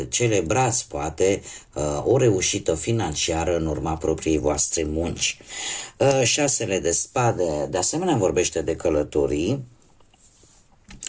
celebrați poate o reușită financiară în urma propriei voastre munci. 6 de spade de asemenea vorbește de călătorii,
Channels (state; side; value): identical; both; correlation 1.00